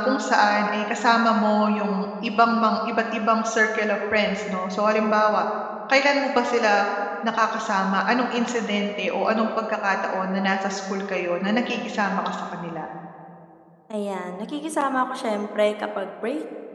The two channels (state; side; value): identical; both; correlation 1.00